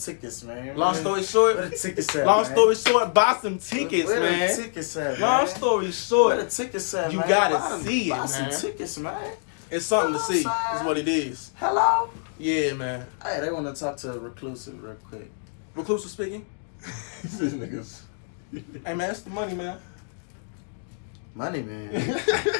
man. long story short, Where the tickets at, long man? story short, buy some tickets, Where man. the tickets at, Long man? story Where short, the tickets at, you man? gotta Buy them- see it, buy some man. tickets, man. it's something to see. outside. Is what it is. Hello? Yeah, man. Hey, they want to talk to Reclusive real quick. Reclusive speaking. These niggas. Hey, man, it's the money, man. Money, man.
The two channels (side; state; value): right; silent; digital silence